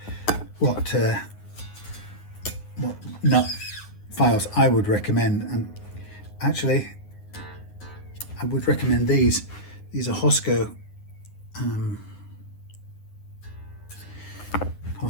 what nut files I would recommend, and actually I would recommend these. These are Tusq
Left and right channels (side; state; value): right; late; 9.6 ms